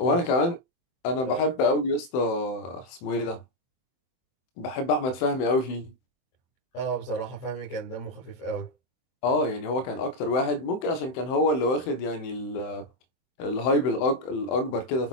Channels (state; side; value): late; right; 23 ms